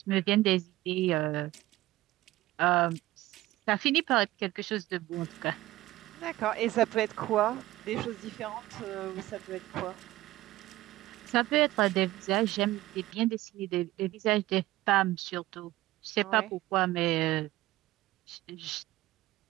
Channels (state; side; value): quieter; left; 17.0 dB